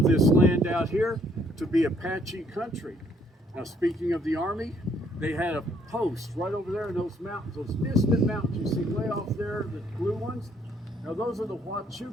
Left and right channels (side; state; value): both; normal; correlation 0.67